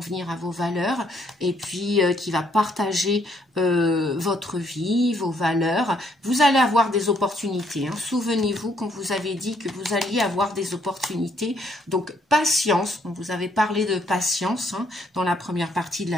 à vos valeurs et puis qui va partager votre vie, vos valeurs. Vous allez avoir des opportunités. Hein. Souvenez-vous qu'on vous avait dit que vous alliez avoir des opportunités. Donc, patience. On vous avait parlé de patience hein, dans la première partie de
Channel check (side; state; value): both; normal; correlation 0.70